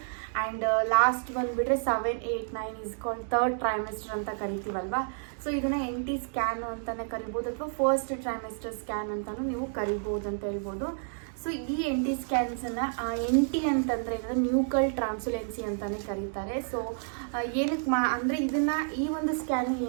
ಆ್ಯಂಡ್ ಲಾಸ್ಟ್ ಬಂದುಬಿಟ್ರೆ 7, 8, 9 ಇಸ್ ಕಾಲ್ಡ್ ಥರ್ಡ್ ಟ್ರೈಮೆಸ್ಟರ್ ಅಂತ ಕರಿತೀವಲ್ವಾ. ಸೊ ಇದನ್ನು NT ಸ್ಕ್ಯಾನು ಅಂತಲೇ ಕರಿಬೋದು ಅಥವಾ ಫಸ್ಟ್ ಟ್ರೈಮೆಸ್ಟರ್ ಸ್ಕ್ಯಾನ್ ಅಂತಲೂ ನೀವು ಕರಿಬೋದು ಅಂತ ಹೇಳ್ಬೋದು. ಸೊ ಈ NT ಸ್ಕ್ಯಾನ್ಸನ್ನು NT ಅಂತಂದರೆ ನ್ಯೂಕಲ್ ಟ್ರಾನ್ಸುಲೆನ್ಸಿ ಅಂತಲೇ ಕರೀತಾರೆ. ಸೊ ಏನಕ್ಕೆ ಅಂದರೆ ಈ ಒಂದು ಸ್ಕ್ಯಾನ್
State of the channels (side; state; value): left; silent; digital silence